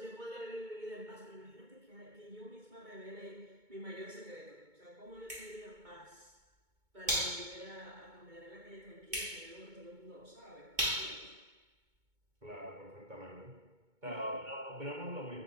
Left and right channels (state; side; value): late; left; 2.2 ms